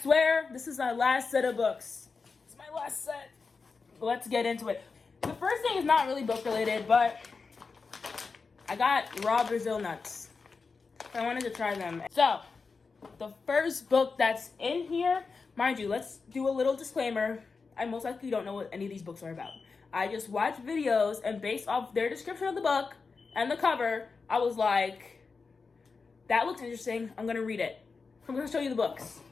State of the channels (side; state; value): right; quieter; 4.6 dB